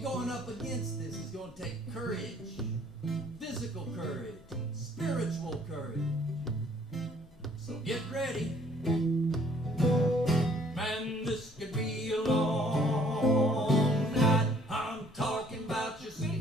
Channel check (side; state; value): both; normal; correlation 0.60